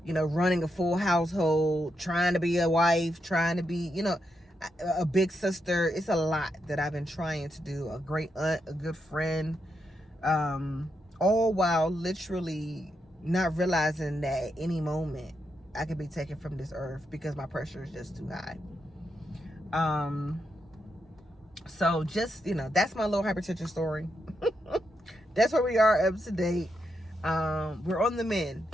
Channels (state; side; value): normal; both; correlation 0.83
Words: running a full household, trying to be a wife, trying to be, a big sister. It's a lot that I've been trying to do, a great aunt, a good friend, all while literally not realizing that at any moment I could be taken from this earth because my pressure is just too high. So just, that's my little hypertension story. That's where we are up to date. We're on the